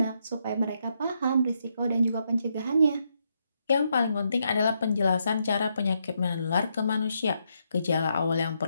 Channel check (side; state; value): both; inverted; correlation -0.79